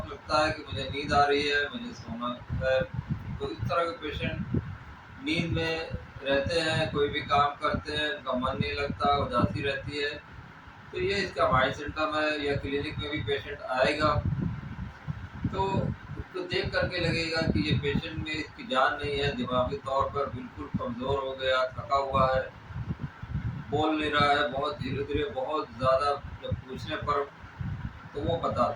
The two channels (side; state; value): both; identical; correlation 1.00